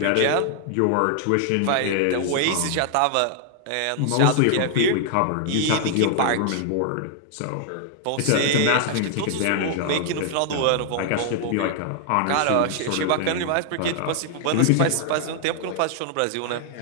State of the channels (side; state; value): both; different; correlation 0.00